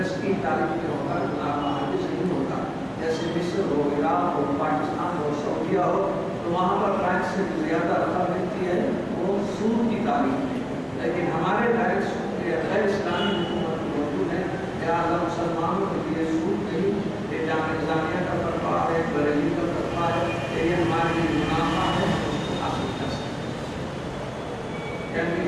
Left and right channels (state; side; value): identical; both; correlation 1.00